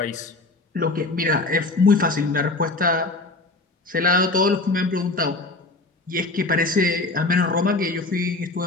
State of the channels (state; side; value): quieter; right; 3.1 dB